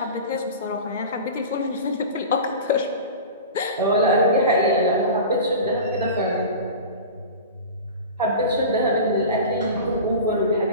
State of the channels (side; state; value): both; inverted; correlation -0.33